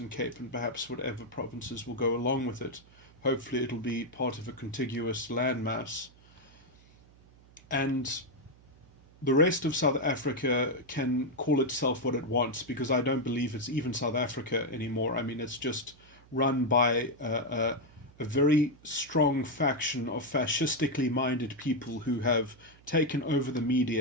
Cape, and perhaps whatever provinces will go along with it. Hopefully it'll be part of a contiguous landmass. And the rest of South Africa can call itself what it wants, because I don't believe it's even South Africa anymore. I mean, it's just run by a very strong faction of fascistically minded people who have taken over the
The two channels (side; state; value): right; noise; hum, 26 dB below the sound